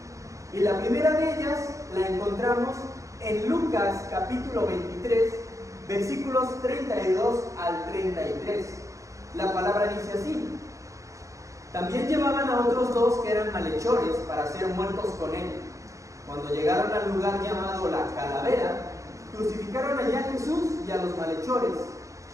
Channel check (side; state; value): left; late; 0.15 ms